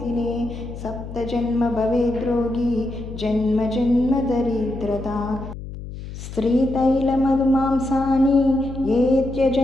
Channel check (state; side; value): noise; left; hum, 11 dB below the sound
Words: सप्तजन्म भवेद्रोगी जन्म जन्म दरिद्रता स्त्रीतैलमधुमांसानि ये